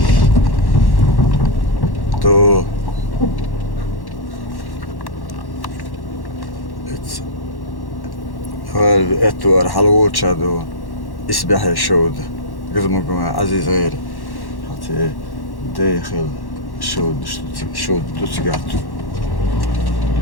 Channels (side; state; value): right; late; 1.1 ms